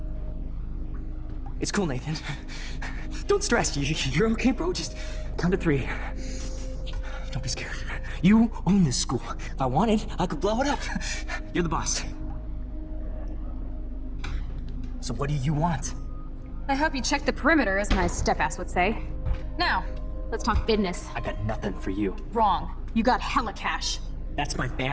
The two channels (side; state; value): both; identical; correlation 1.00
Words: It's cool, Nathan. Don't stress. You're okay, bro. Just count to 3. Don't be scared. You own this school. If I wanted, I could blow it up. You're the boss. So what do you want? I hope you checked the perimeter, as my step-ass would say. Now, let's talk business. I got nothing for you. Wrong. You got hella cash. That's my